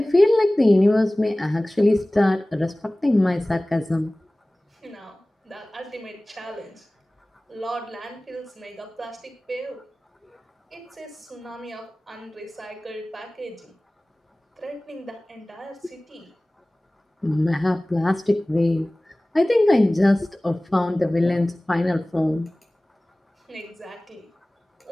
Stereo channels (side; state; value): both; normal; correlation 0.98